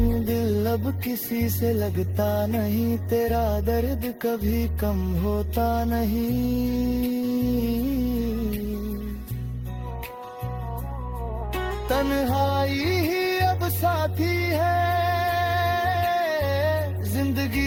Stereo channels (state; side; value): identical; both; correlation 1.00